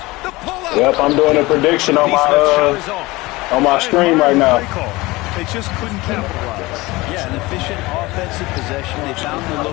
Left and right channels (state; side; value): quieter; right; 21.1 dB